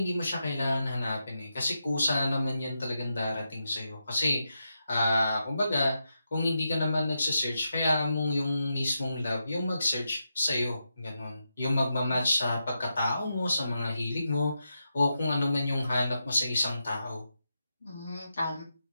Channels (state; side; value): inverted; both; correlation -0.86